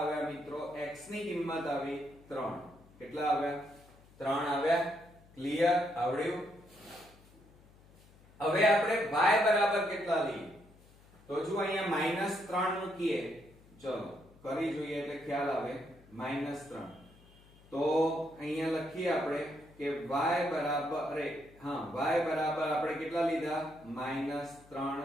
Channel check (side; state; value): left; noise; hum, 26 dB below the sound